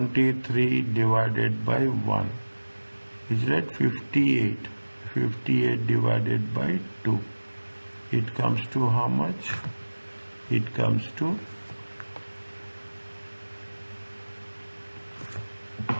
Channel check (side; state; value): both; inverted; correlation -1.00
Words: divided by 1? Is that 58? 58 divided by 2. It comes to how much? It comes to